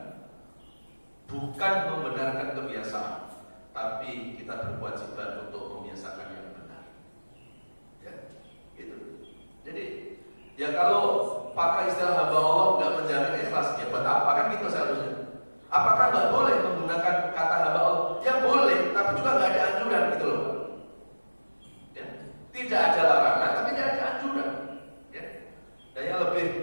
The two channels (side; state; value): both; inverted; correlation -1.00